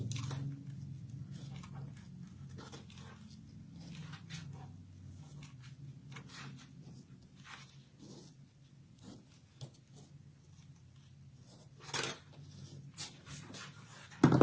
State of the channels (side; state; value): both; identical; correlation 1.00